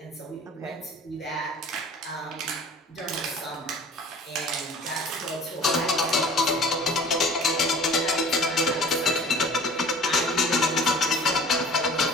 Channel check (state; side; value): normal; both; correlation 0.46